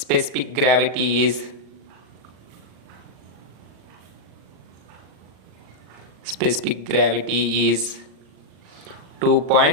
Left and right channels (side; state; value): left; late; 39 ms